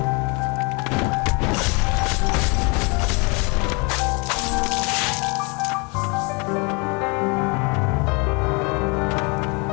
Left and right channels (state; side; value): quieter; right; 31.0 dB